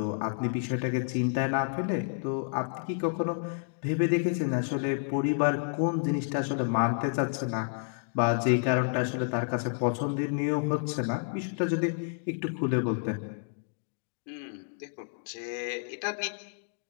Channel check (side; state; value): right; silent; digital silence